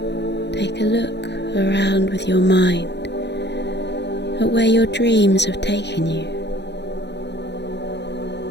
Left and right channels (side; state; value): right; late; 0.50 ms